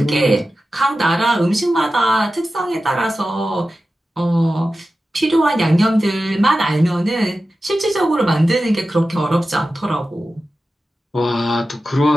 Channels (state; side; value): normal; both; correlation 0.93